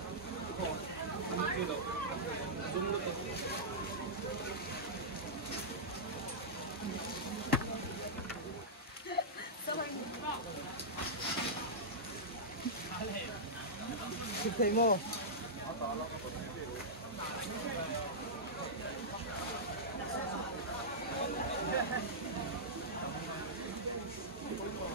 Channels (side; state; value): both; normal; correlation -0.12